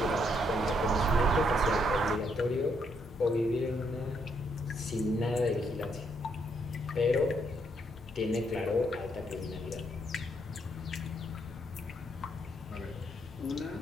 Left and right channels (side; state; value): both; normal; correlation 0.74